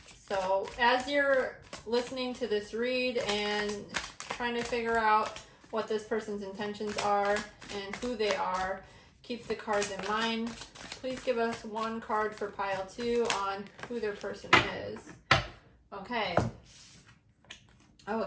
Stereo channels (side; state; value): both; identical; correlation 1.00